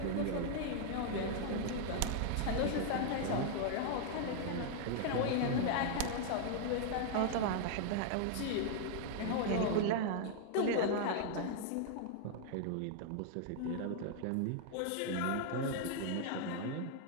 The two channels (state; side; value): different; both; correlation -0.01